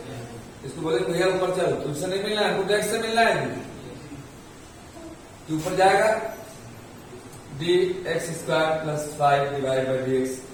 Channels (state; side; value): identical; both; correlation 1.00